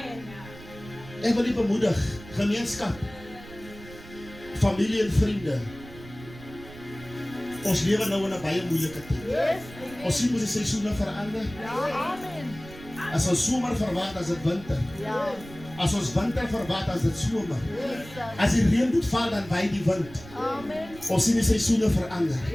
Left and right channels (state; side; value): noise; right; rumble, 17 dB below the sound